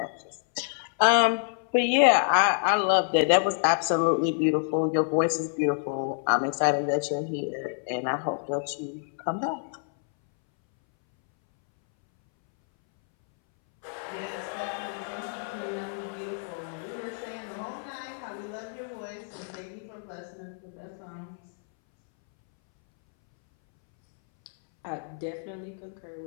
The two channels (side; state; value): right; silent; 59 dB below the other